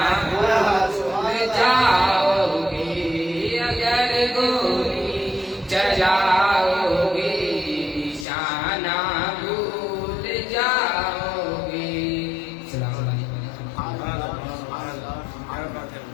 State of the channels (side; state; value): right; drops out; at 8.2 s